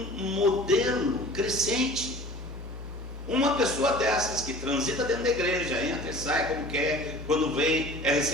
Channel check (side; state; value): both; normal; correlation 0.43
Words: modelo crescente. Uma pessoa dessas que transita dentro da igreja, entra e sai como quer, quando vem é